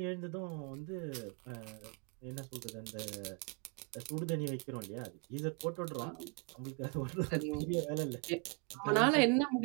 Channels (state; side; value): quieter; left; 34.6 dB